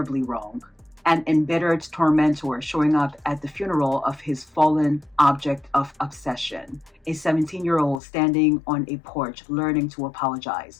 wrong. An embittered tormentor showing up at the funeral of his fallen object of obsession. A 17-year-old standing on a porch learning to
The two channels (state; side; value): drops out; right; at 8.0 s